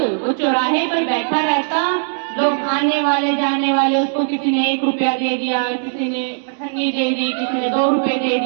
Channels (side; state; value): left; silent; digital silence